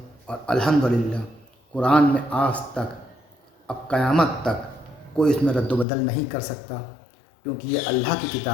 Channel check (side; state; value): right; drops out; at 5.9 s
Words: اور الحمدللہ قرآن میں آج تک، اب قیامت تک کوئی اس میں رد و بدل نہیں کر سکتا، کیونکہ یہ اللہ کی